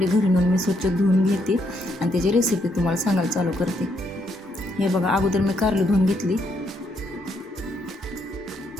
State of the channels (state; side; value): normal; both; correlation 0.75